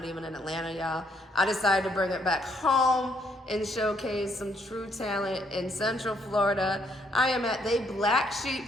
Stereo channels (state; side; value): normal; both; correlation 0.71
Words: even in Atlanta, y'all. I decided to bring it back home and showcase some true talent in Central Florida. I am at the Black